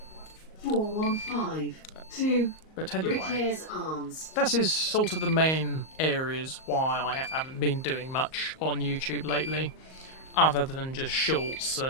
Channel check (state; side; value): late; right; 38 ms